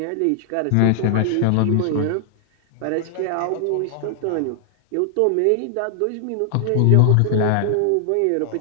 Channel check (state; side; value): different; both; correlation 0.00